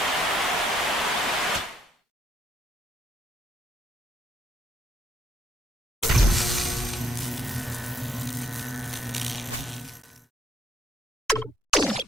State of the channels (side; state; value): both; normal; correlation 0.70